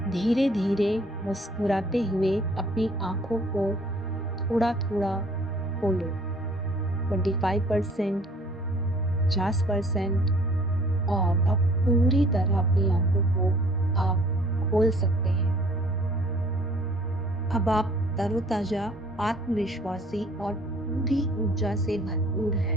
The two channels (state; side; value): normal; both; correlation 0.55